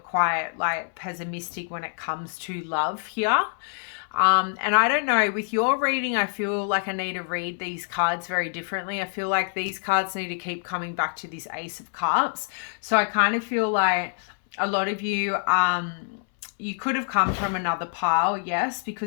like pessimistic when it comes to love here. And I don't know, with your reading, I feel like I need to read these cards very differently. I feel like these cards need to keep coming back to this Ace of Cups. So I kind of feel like a lot of you, you could have come from another pile, yes,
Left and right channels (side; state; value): right; silent; 61 dB below the other